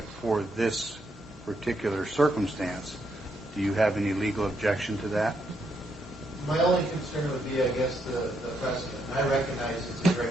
for this particular circumstance, do you have any legal objection to that? My only concern would be, I guess, the precedent. I recognize it's a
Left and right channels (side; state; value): both; normal; correlation 0.77